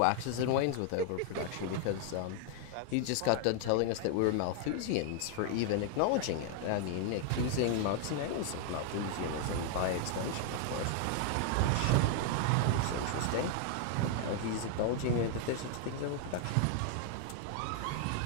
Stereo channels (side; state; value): both; different; correlation 0.00